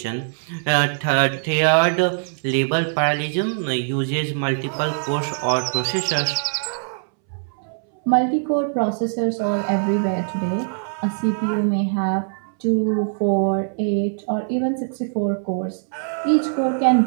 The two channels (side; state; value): left; silent; 64 dB below the other